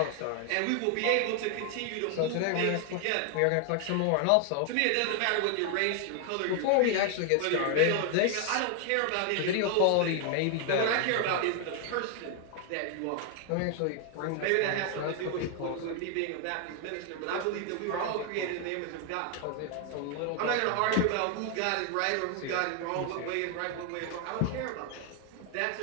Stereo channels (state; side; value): different; both; correlation 0.00